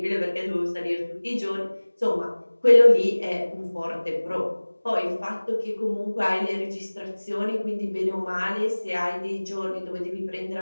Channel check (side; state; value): both; inverted; correlation -1.00